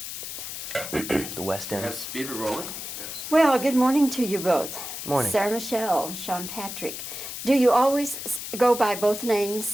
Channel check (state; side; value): noise; left; hiss, 8 dB below the sound